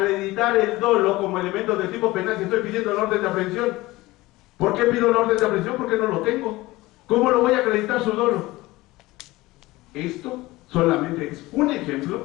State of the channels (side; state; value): right; quieter; 19.5 dB